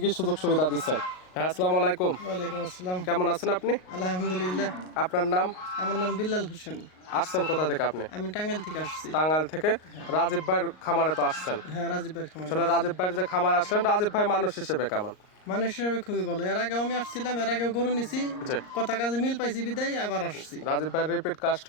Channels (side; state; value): right; late; 38 ms